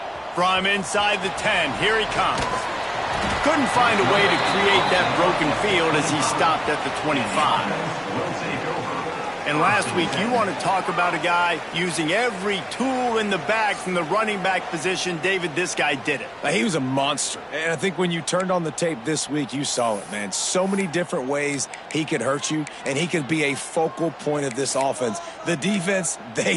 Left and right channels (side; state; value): both; identical; correlation 1.00